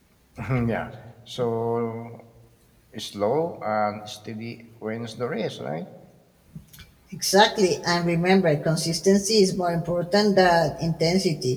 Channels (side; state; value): both; identical; correlation 1.00